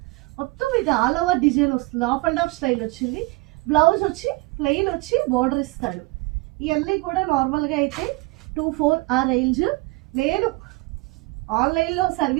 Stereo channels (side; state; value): left; quieter; 23.6 dB